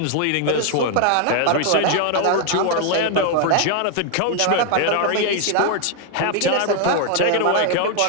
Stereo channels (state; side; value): different; both; correlation 0.00